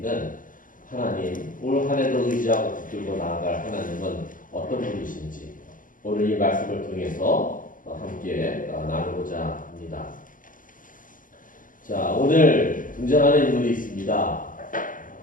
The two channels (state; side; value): late; right; 0.39 ms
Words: 하나님, 올 한 해도 의지하고 붙들고 나아갈 하나님은 어떤 분이신지 오늘 이 말씀을 통해서 함께 나누고자 합니다. 자, 오늘 등장하는 인물이 있습니다.